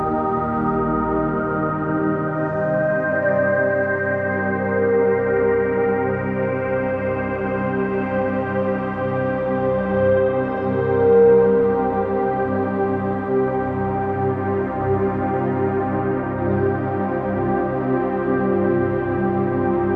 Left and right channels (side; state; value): both; identical; correlation 1.00